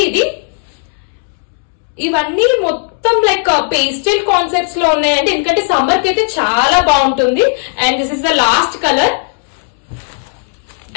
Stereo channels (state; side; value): silent; right; digital silence